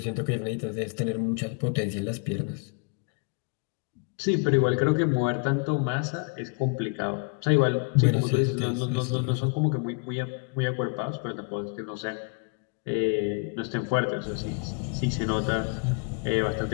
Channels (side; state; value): right; quieter; 36.6 dB